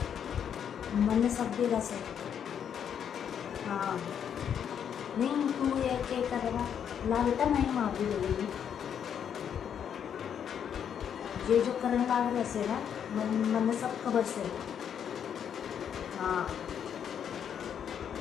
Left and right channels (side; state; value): right; quieter; 8.4 dB